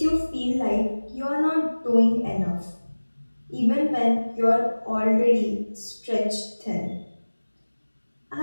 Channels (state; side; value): inverted; both; correlation -1.00